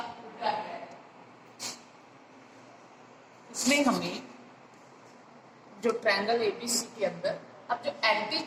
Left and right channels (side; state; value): both; identical; correlation 1.00